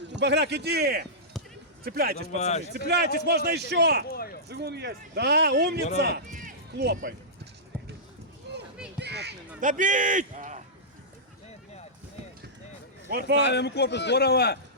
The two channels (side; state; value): both; normal; correlation -0.16